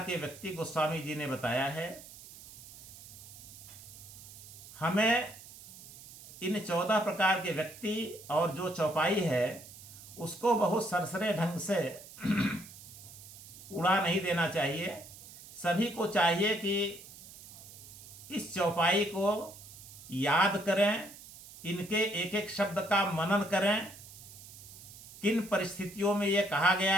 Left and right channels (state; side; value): noise; right; hiss, 17 dB below the sound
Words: व्यक्ति गोस्वामी जी ने बताया है। हमें इन 14 प्रकार के व्यक्ति और जो चौपाई है उसको बहुत सरसरे ढंग से उड़ा नहीं देना चाहिए। सभी को चाहिए कि इस चौपाई को याद करें, इनके एक एक शब्द का मनन करें, किन परिस्थितियों में यह कहा